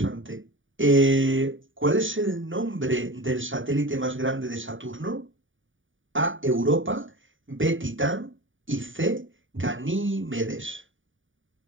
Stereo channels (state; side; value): late; left; 0.57 ms